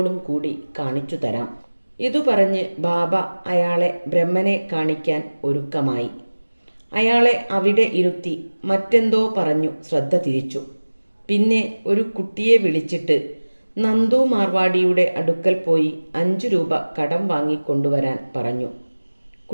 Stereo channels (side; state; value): both; inverted; correlation -1.00